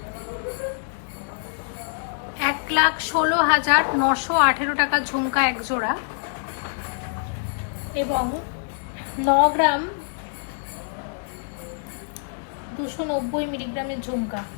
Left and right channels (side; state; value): right; silent; digital silence